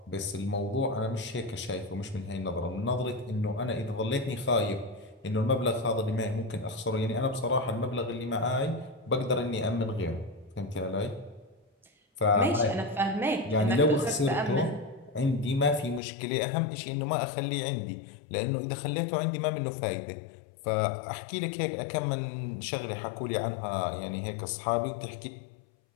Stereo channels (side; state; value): right; drops out; at 16.0 s